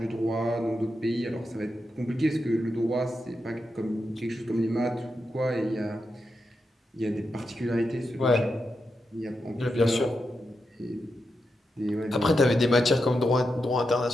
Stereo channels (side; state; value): both; normal; correlation 0.87